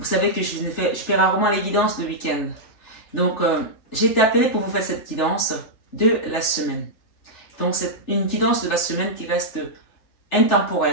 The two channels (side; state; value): right; late; 3.4 ms